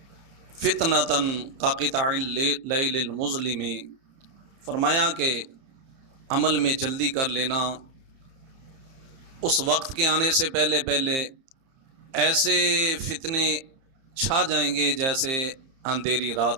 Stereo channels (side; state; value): left; late; 30 ms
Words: فتنۃ کقطع اللیل المظلم، فرمایا کہ عمل میں جلدی کر لینا، اس وقت کے آنے سے پہلے ایسے فتنے چھا جائیں گے جیسے اندھیری